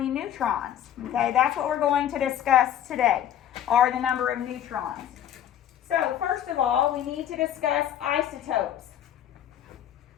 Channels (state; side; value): quieter; right; 10.7 dB